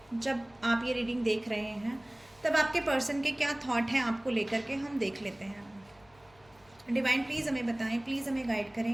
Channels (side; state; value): left; noise; hum, 30 dB below the sound